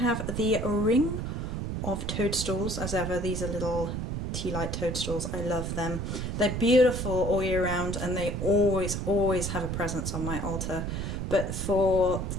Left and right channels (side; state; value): right; noise; rumble, 3 dB below the sound